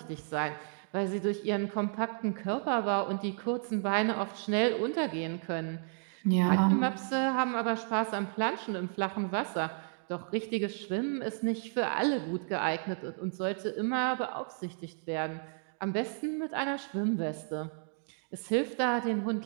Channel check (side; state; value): left; silent; 56 dB below the other